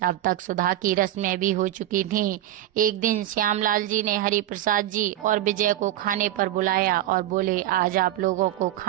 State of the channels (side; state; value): left; quieter; 13.4 dB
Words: अब तक सुधा की रस्में भी हो चुकी थीं। एक दिन श्यामलाल जी ने हरि प्रसाद जी और विजय को खाने पर बुलाया और बोले, आज आप लोगों को